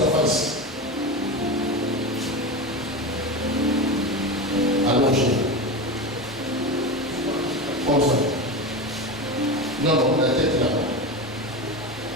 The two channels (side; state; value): both; normal; correlation 0.22